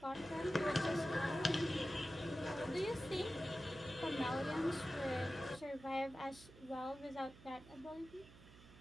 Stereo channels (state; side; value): noise; right; hum, 20 dB below the sound